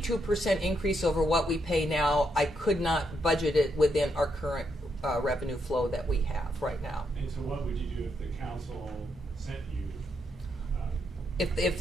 increase over what we pay now, I could not budget it within our current revenue flow that we have right now. And so what would you do if the council sent you?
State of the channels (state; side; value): normal; both; correlation 0.79